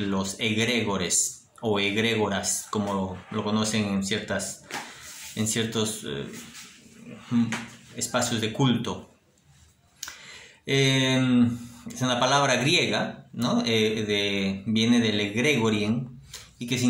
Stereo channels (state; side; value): identical; both; correlation 1.00